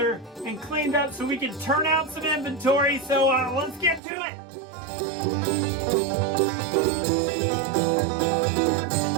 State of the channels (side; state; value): left; drops out; at 4.0 s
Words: and cleaned up so we can turn out some inventory. So let's get to it.